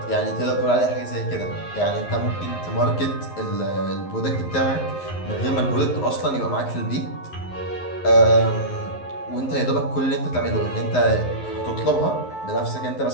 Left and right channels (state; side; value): late; right; 11 ms